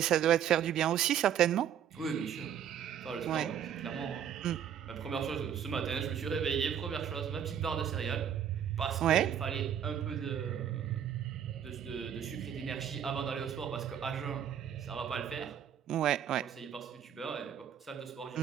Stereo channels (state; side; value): quieter; left; 9.2 dB